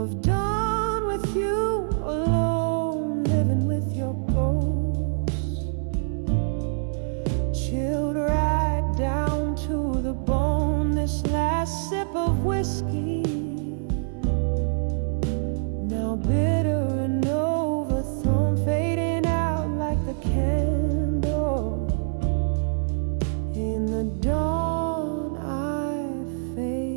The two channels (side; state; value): left; silent; digital silence